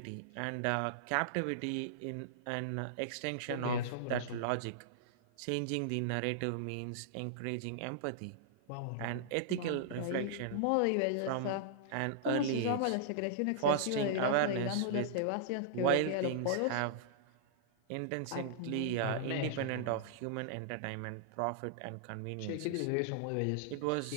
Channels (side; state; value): both; different; correlation -0.02